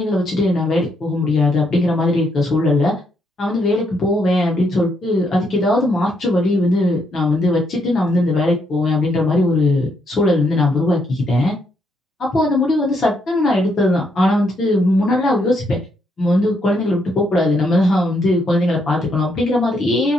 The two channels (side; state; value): both; normal; correlation 0.75